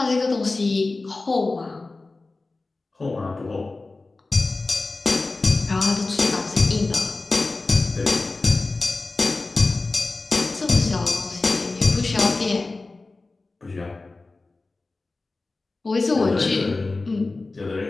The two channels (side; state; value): right; quieter; 3.4 dB